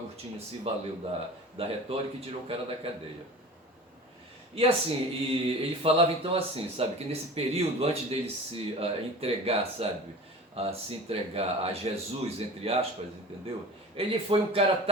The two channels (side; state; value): both; normal; correlation 0.37